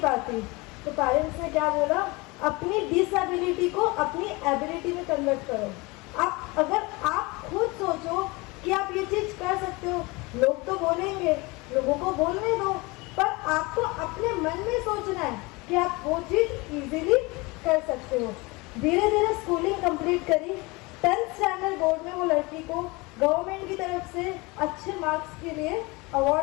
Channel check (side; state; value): right; quieter; 24.9 dB